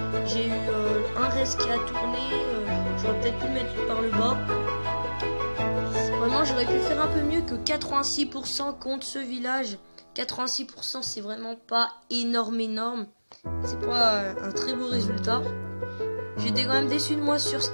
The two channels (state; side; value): inverted; both; correlation -1.00